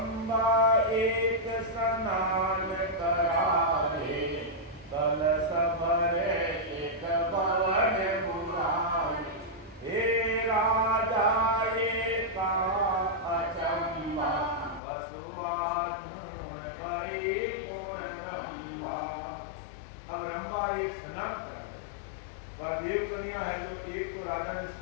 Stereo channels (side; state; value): right; drops out; at 14.8 s